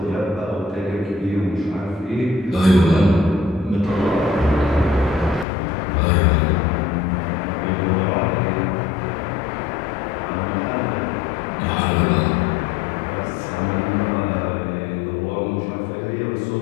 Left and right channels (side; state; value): right; drops out; at 5.5 s